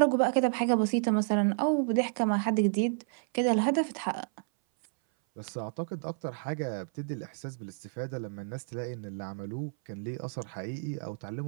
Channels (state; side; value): silent; left; 57 dB below the other